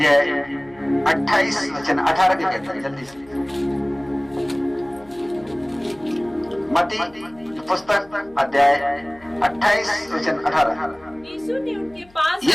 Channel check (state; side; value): noise; left; hum, 27 dB below the sound